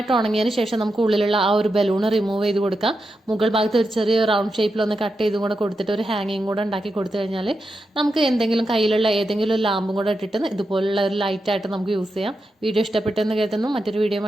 ഉണങ്ങിയതിന് ശേഷം നമുക്ക് ഉള്ളിലുള്ള ആ ഒരു ബലൂൺ റിമൂവ് ചെയ്ത് കൊടുക്കാം. മുകൾ ഭാഗത്ത് ഒരു ചെറിയ റൗണ്ട് ഷേപ്പിലൊന്ന് കട്ട് ചെയ്തും കൂടെ കൊടുത്തിട്ട് ഒരു ഹാങ്ങിങ് കൂടെ ഉണ്ടാക്കി കൊടുത്തു കഴിഞ്ഞാൽ നമുക്ക് എന്തെങ്കിലും കയ്യിലുള്ള ഏതെങ്കിലും ഒരു ലാമ്പും കൂടെ ഇട്ടിട്ട് ഇതുപോലുള്ള ഒരു ലൈറ്റായിട്ട് നമുക്ക് യൂസ് ചെയ്യാം. വീഡിയോ ഇഷ്ടപ്പെട്ടെന്ന് കരുതുന്നു. മറ്റൊരു വീഡിയോ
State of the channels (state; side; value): normal; both; correlation 0.87